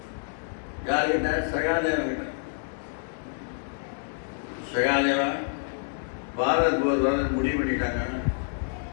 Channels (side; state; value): right; silent; 60 dB below the other